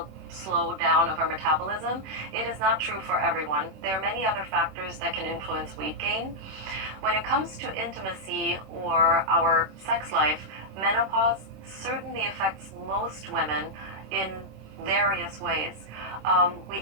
slowdown of our metabolism. It is not true for everyone. There are many other factors that can influence weight gain. When it comes to intimacy or our sex life, menopause certainly affects most women in various ways. We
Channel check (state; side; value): late; left; 26 ms